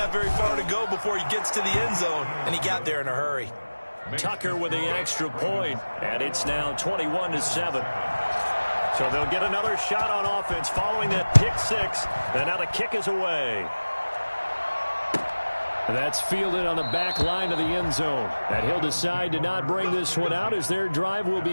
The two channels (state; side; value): inverted; both; correlation -1.00